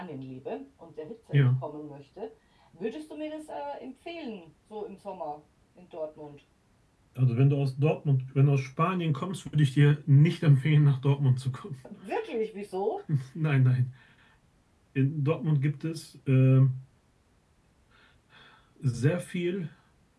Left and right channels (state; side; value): identical; both; correlation 1.00